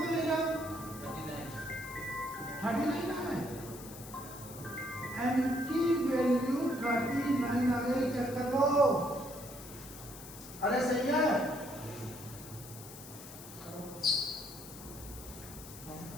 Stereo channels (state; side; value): noise; left; hiss, 15 dB below the sound